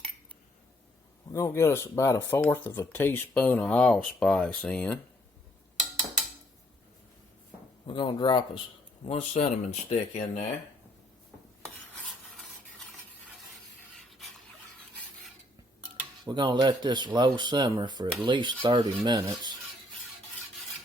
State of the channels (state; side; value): normal; both; correlation 0.68